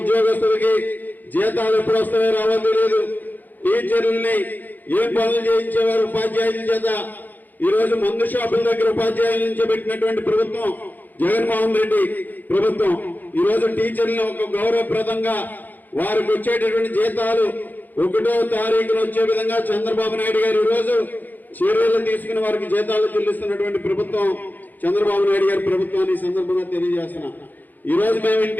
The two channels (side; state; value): right; late; 0.085 ms